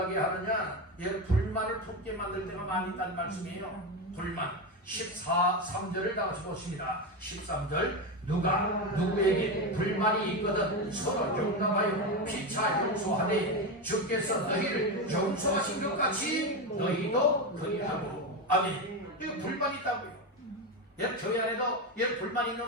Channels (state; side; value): normal; both; correlation 0.14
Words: 하느냐? 불만을 품게 만들 때가 많이 있다는 말씀이에요. 불만 3절을 다 같이 보십니다. 13절 누가 누구에게 불만이 있거든 서로 용납하여 피차 용서하되 주께서 너희를 용서하신 것 같이 너희도 그리하고. 아멘. 이거 불만이 있다고요. 교회 안에도 불만